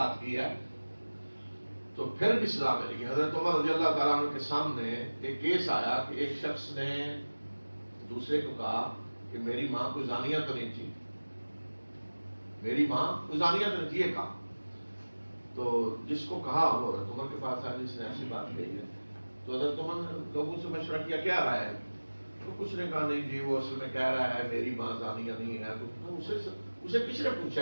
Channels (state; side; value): inverted; both; correlation -1.00